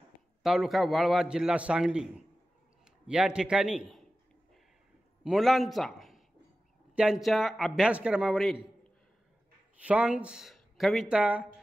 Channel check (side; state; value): both; normal; correlation 0.95